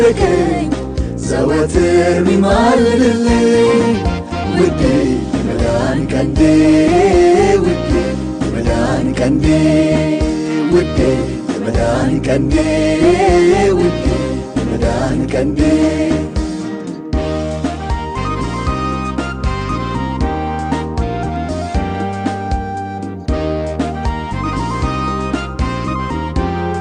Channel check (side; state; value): both; identical; correlation 1.00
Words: ዘወትር ሚማልድልኝ ውዴ የመዳን ቀንዴ ውዴ የመዳን ቀንዴ ውዴ የመዳን ቀንዴ ውዴ የመዳን ቀንዴ